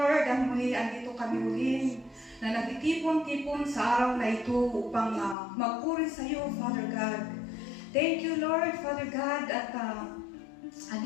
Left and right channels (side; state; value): right; drops out; at 5.4 s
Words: at muli andito kami uli na nagtitipon-tipon sa araw na ito upang magpuri sa iyo, Father God. Thank you, Lord, Father God, at